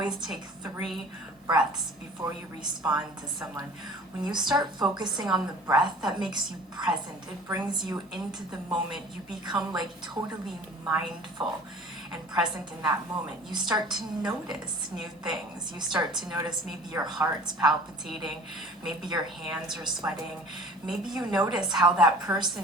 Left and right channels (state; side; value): normal; both; correlation 0.45